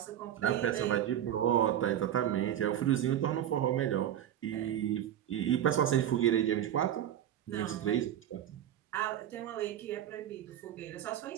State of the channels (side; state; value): left; quieter; 10.9 dB